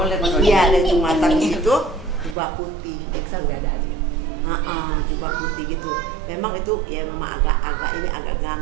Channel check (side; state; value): left; drops out; at 2.4 s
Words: lihat mana? Iya, ada ujung mata gitu, jubah putih. Excel udah ada aja. Jubah putih gitu. Memang itu ya memang agak